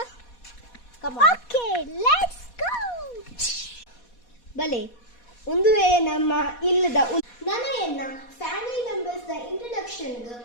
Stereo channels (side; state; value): right; late; 4.2 ms